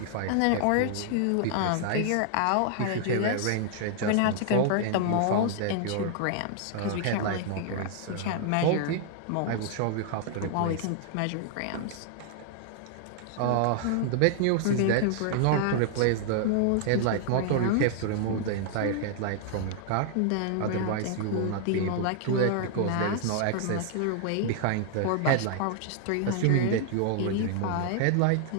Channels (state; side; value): different; both; correlation 0.00